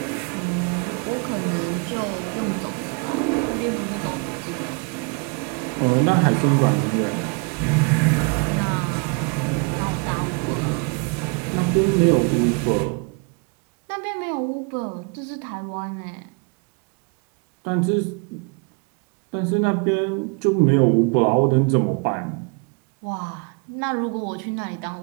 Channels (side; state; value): left; quieter; 33.2 dB